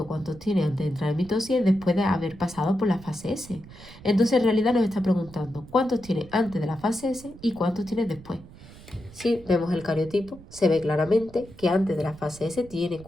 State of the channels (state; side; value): noise; right; rumble, 19 dB below the sound